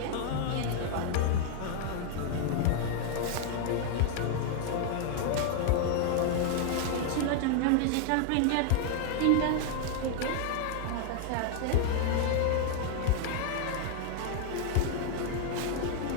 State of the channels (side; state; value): both; different; correlation 0.00